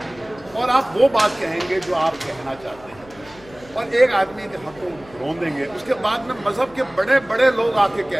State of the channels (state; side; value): noise; left; hum, 23 dB below the sound